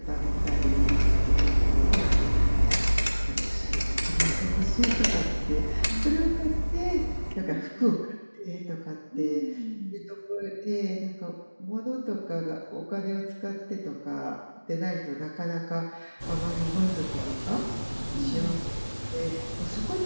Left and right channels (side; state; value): both; inverted; correlation -1.00